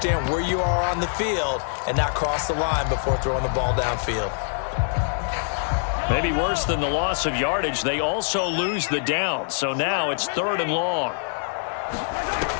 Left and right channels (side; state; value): right; silent; digital silence